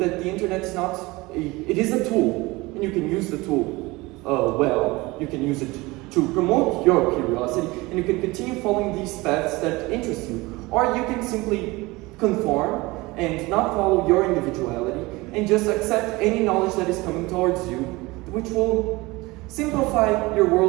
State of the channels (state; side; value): quieter; left; 22.2 dB